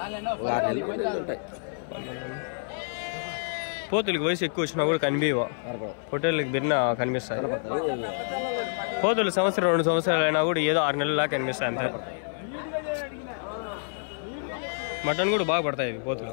12 పోతులకి వయసు ఎక్కువ వచ్చినా కూడా కనిపించవు. హోటల్కి బిన్న కనిపిస్తాయి. పోతులు 1-2 సంవత్సరాలు అయినా కూడా ఏదో 6 నెలలా కనిపిస్తాయి అంతే. మటన్ కూడా బాగా పడతాయి ఇవి పోతులు.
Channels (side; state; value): right; silent; 58 dB below the other